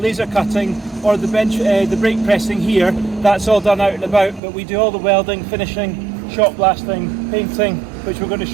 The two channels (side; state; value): left; drops out; at 4.4 s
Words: cutting or the brake pressing here. That's all done out and about, but we do all the welding, finishing, shot blasting, painting, which we're going to